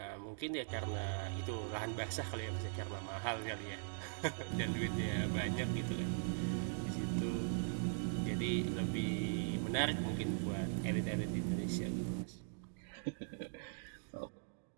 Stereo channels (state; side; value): silent; left; digital silence